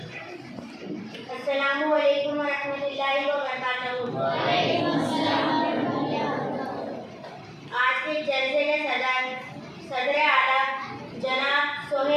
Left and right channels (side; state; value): both; identical; correlation 1.00